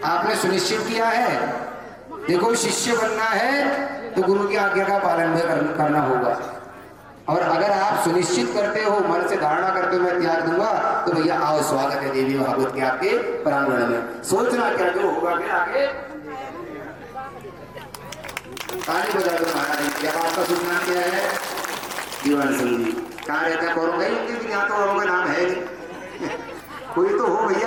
आपने सुनिश्चित किया है, देखो शिष्य बनना है तो गुरु की आज्ञा का पालन भी करना होगा, और अगर आप सुनिश्चित करते हो, मन से धारणा करते हो मैं त्याग दूंगा, तो भैया आओ, स्वागत है देवी भागवत के आपके प्रांगण में। सोचना क्या जो होगा फिर आगे, ताली बजा दो महाराज। क्या आपका शुभ नाम क्या है? जीवन सिंह जी। कहाँ रहता है? कौरंगा ही होंगे, यहाँ तो औरों का नाम है नहीं। कोई तो हो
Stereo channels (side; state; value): both; identical; correlation 1.00